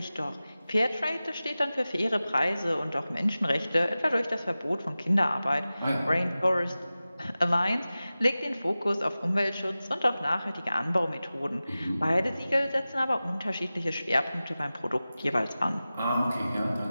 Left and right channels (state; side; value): inverted; both; correlation -0.96